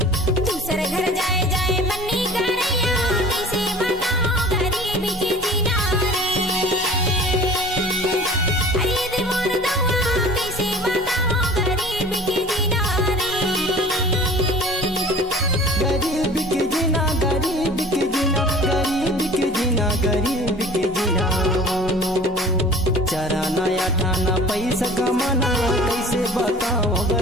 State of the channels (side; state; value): both; normal; correlation 0.45